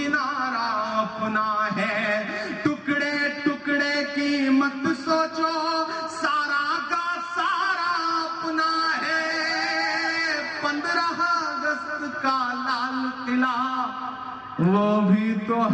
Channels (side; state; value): both; identical; correlation 1.00